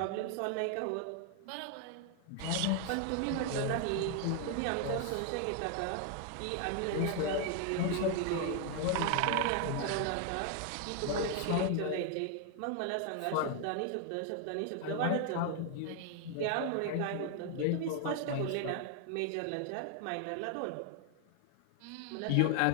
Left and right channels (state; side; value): different; both; correlation 0.00